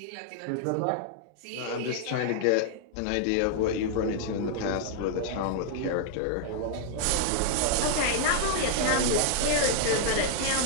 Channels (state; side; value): different; both; correlation 0.00